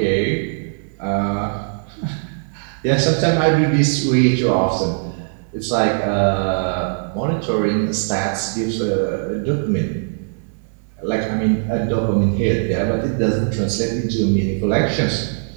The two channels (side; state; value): left; silent; 66 dB below the other